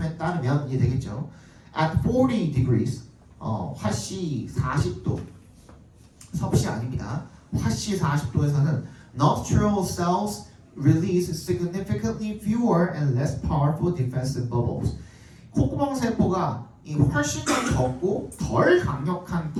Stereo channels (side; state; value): both; identical; correlation 1.00